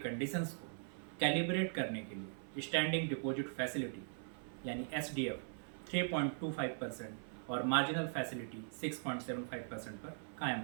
को कैलिब्रेट करने के लिए स्टैंडिंग डिपॉजिट फैसिलिटी यानी एसडीएफ 3.25% और मार्जिनल फैसिलिटी 6.75% पर कायम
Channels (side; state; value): left; silent; 51 dB below the other